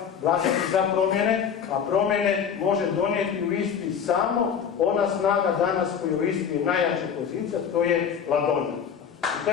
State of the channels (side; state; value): right; quieter; 7.5 dB